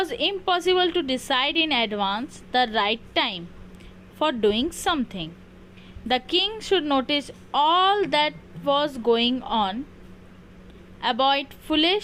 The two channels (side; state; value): both; identical; correlation 1.00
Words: impossible to decide in advance the right time for doing something. The king should notice all that was going on, avoid